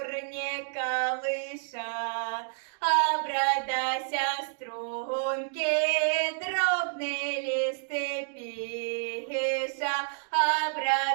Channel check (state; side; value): silent; left; 58 dB below the other